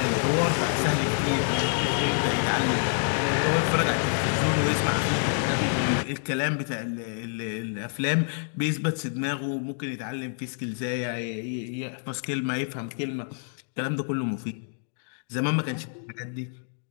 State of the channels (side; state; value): right; silent; digital silence